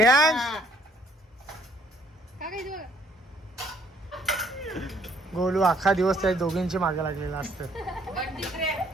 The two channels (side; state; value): both; normal; correlation 0.64